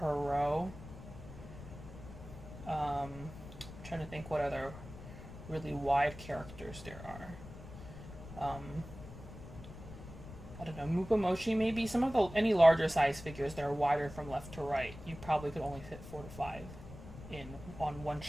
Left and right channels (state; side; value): noise; left; rumble, 14 dB below the sound